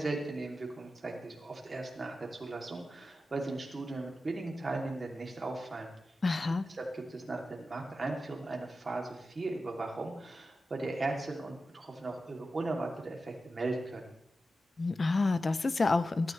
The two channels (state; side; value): normal; both; correlation 0.92